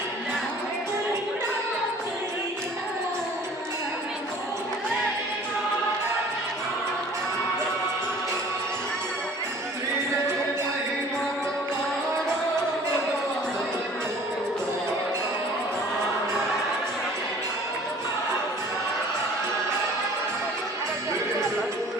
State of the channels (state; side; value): normal; both; correlation 0.50